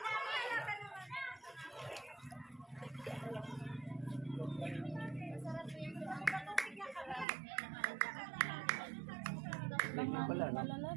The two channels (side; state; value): left; drops out; at 7.2 s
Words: Ganyan pala, no?